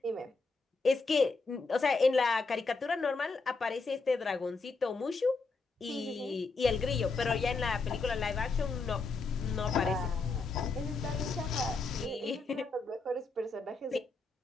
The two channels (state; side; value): quieter; right; 4.0 dB